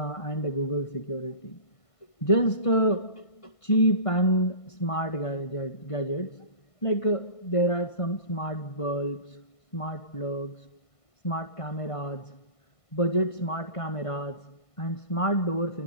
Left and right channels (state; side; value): late; right; 1.5 ms